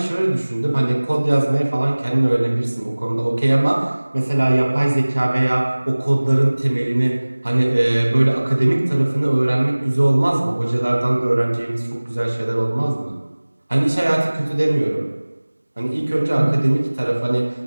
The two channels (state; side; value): inverted; both; correlation -1.00